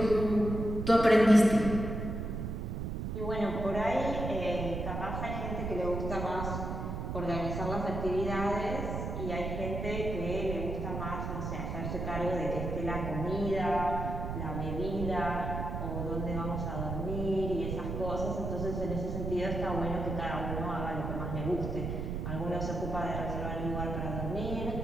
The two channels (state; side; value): noise; right; rumble, 3 dB below the sound